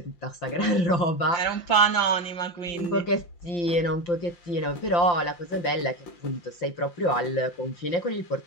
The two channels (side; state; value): right; late; 5.8 ms